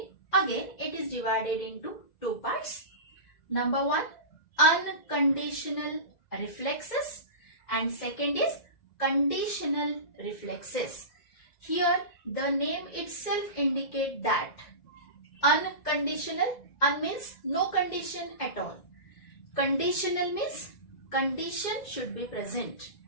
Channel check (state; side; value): late; right; 2.0 ms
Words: again it is divided into two parts. Number one, unconditional reflexes, and second is conditional reflexes. Here the name itself indicate that unconditional, means no condition at all. Conditional means condition should be present.